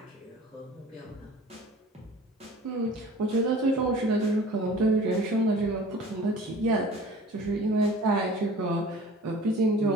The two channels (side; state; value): both; normal; correlation 0.44